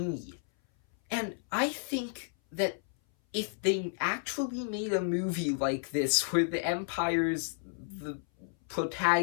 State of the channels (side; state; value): right; silent; 57 dB below the other